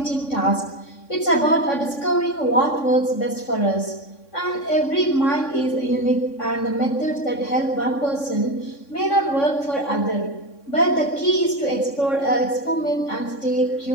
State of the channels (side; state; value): right; late; 3.6 ms